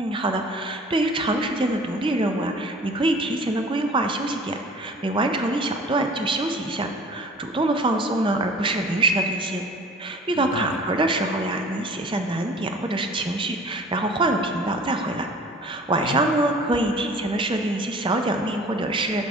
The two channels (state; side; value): normal; both; correlation 0.46